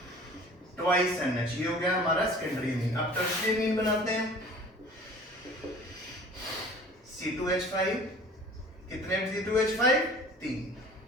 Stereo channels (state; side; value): normal; both; correlation 0.46